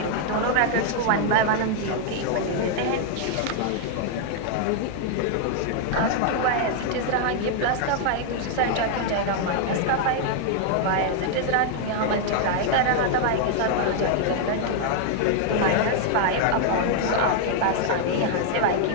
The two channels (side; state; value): both; different; correlation 0.00